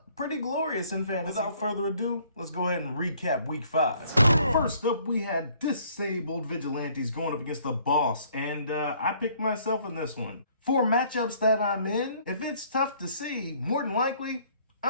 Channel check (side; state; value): both; inverted; correlation -0.61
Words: pretty glorious in fantasy. Without further ado, let's go ahead and recap week 5. First up, we had disabled vigilantes going up against the boss, and I picked myself in this one. For matchups that I'm in, if it's tough to see, more than likely,